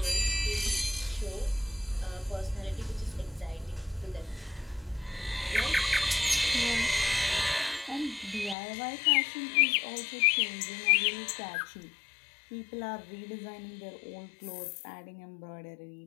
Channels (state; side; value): drops out; right; at 8.6 s